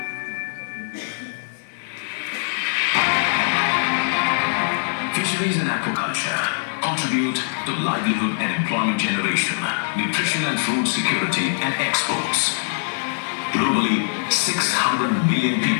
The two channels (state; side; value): silent; right; digital silence